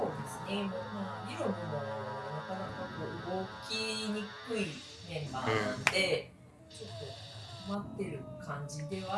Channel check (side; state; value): both; identical; correlation 1.00